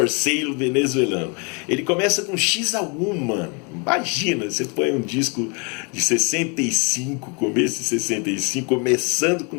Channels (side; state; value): right; quieter; 33.1 dB